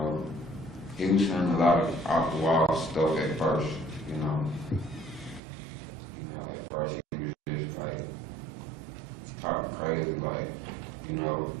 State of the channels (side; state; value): left; drops out; at 5.4 s